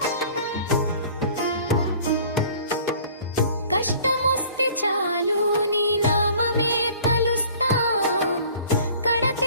కష్టమొస్తే చాలు నీ నామమే తలుస్తాం, కడ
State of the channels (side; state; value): both; inverted; correlation -0.50